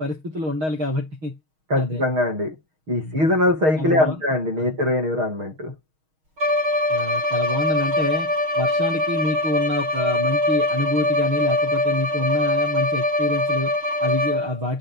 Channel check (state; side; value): late; left; 6.4 ms